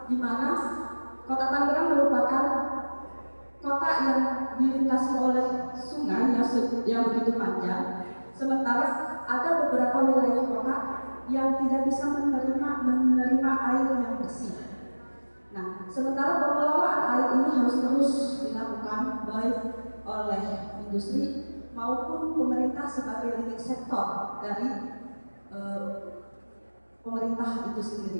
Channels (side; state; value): both; inverted; correlation -1.00